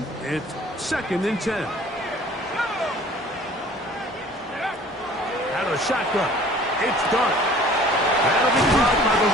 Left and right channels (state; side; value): normal; both; correlation 0.50